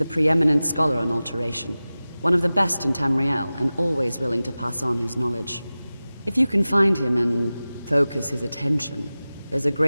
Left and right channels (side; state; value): both; inverted; correlation -0.97